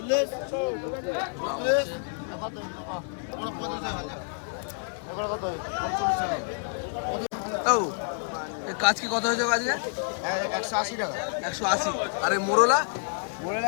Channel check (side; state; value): right; silent; digital silence